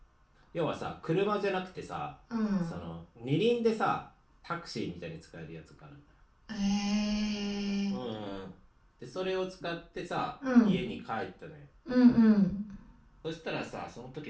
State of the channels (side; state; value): both; identical; correlation 1.00